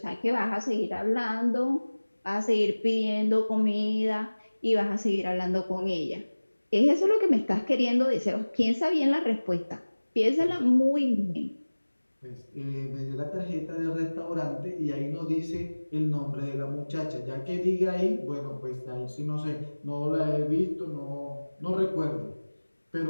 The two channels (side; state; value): both; inverted; correlation -1.00